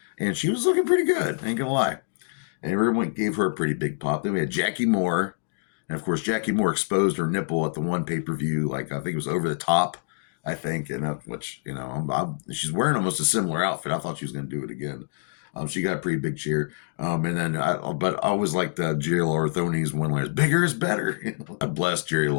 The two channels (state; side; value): silent; right; digital silence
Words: and she was looking pretty good. Ain't gonna lie. And everyone gave her a pretty big pop. Then we had Jackie Moore, and of course, Jackie Moore exposed her nipple at the one pay-per-view. Like I think it was over the top. I think, and which she's wearing almost a similar outfit. I thought she was going to do it again. She got a pretty big cheer, and then but I always liked Jerry Lawler throwing these one-liners. Bigger is better. I bless Jerry